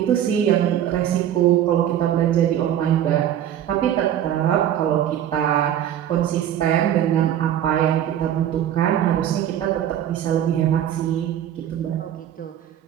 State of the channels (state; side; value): quieter; left; 10.7 dB